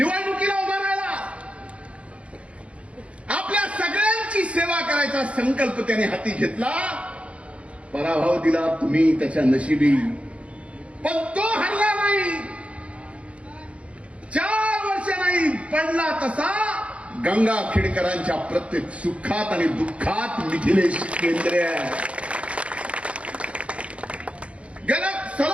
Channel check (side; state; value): left; late; 0.062 ms